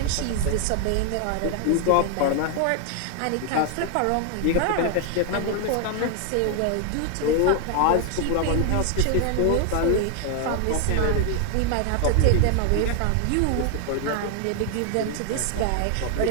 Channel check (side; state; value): both; different; correlation 0.00